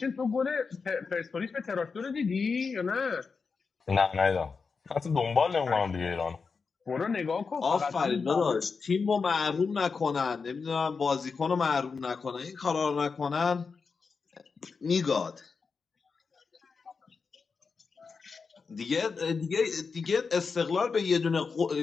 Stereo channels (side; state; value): right; quieter; 5.0 dB